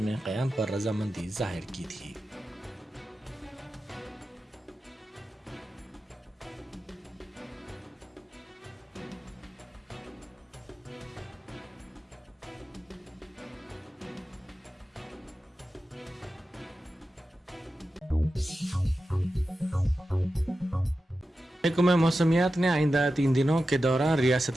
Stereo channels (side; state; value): both; normal; correlation 0.92